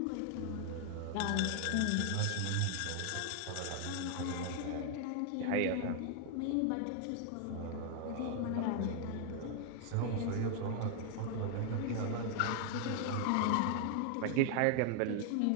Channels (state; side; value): different; both; correlation 0.00